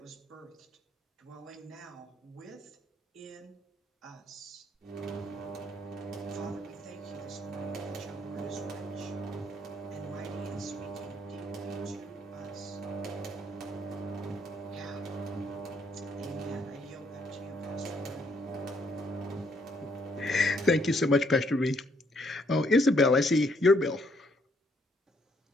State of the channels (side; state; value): both; normal; correlation 0.69